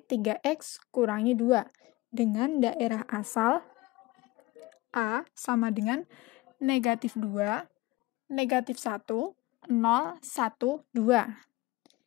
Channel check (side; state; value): right; quieter; 20.2 dB